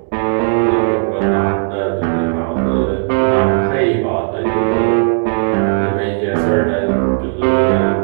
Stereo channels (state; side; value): silent; left; digital silence